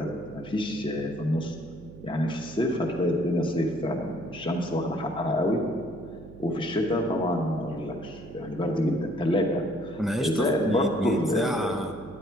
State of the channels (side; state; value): right; noise; hum, 16 dB below the sound